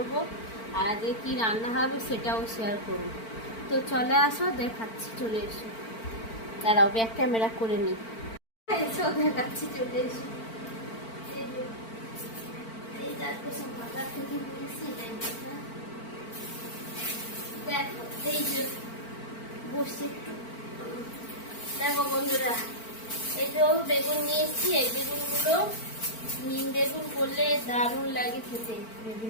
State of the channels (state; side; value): late; right; 4.5 ms